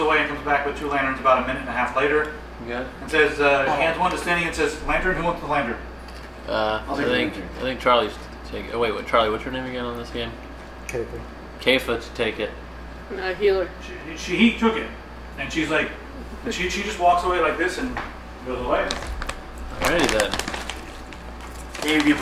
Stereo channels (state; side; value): identical; both; correlation 1.00